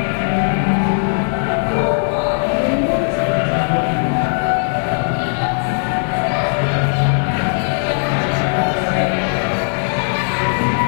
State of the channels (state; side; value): silent; right; digital silence